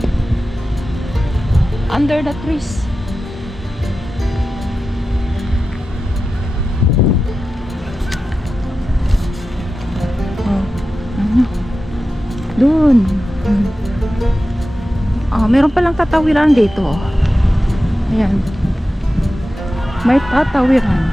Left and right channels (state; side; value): normal; both; correlation 0.93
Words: Under the trees. Oh, ano? Doon. Oh, meron palang tatawiran dito. Ayan. May